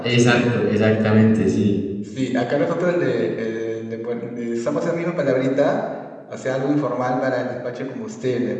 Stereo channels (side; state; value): both; identical; correlation 1.00